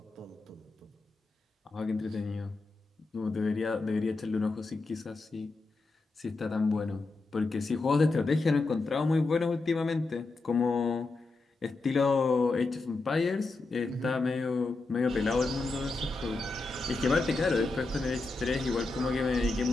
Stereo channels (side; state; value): right; quieter; 3.5 dB